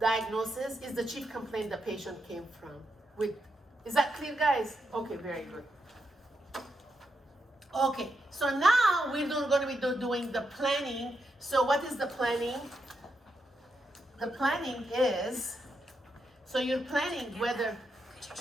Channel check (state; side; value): normal; both; correlation 0.83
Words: Is the chief complaint the patient came from. Is that clear, guys? Okay, very good. Okay, so now we're going to be doing the planning. So what is the planning? The planning is, so you're planning whether. Could you